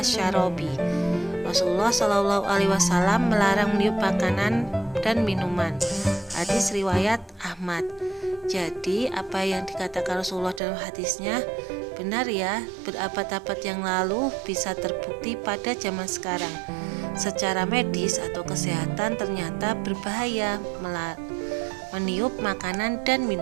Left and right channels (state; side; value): drops out; left; at 10.6 s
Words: Rasulullah SAW melarang meniup makanan dan minuman. Hadis riwayat Ahmad. Jadi apa yang dikatakan Rasulullah dalam hadisnya benar ya, berabad-abad yang lalu bisa terbukti pada zaman sekarang. Secara medis atau kesehatan ternyata berbahaya meniup makanan dan